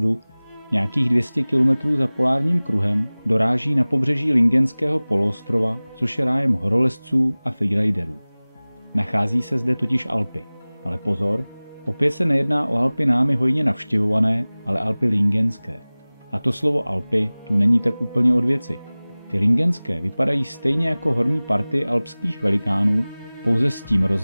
nějakých 200 km za polárním kruhem, doráží na pobřeží Lingenského poloostrova, což je rájem horolezců a freeriderů. Nachází se zde totiž Alpy. Ale pozor, opět se nejedná o Alpy námi hojně navštěvované, ale Alpy lingenské. A to slovo Alpy tu není tak úplně od věci. Ty lingenské vypadají stejně jako horní party alpských velikánů, pouze s tím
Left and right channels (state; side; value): inverted; both; correlation -0.99